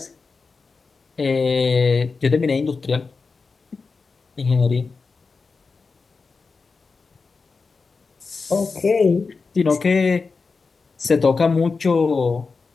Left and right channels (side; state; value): right; quieter; 4.5 dB